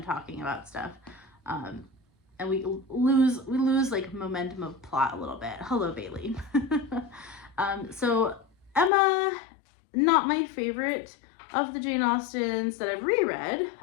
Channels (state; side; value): drops out; right; at 8.9 s